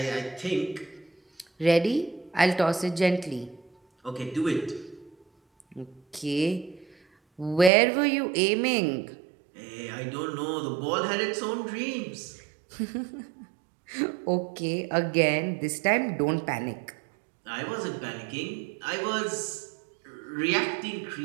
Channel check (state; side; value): drops out; left; at 7.7 s